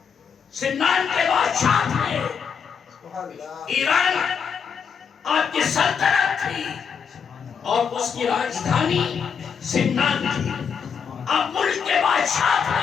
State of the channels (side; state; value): right; quieter; 6.7 dB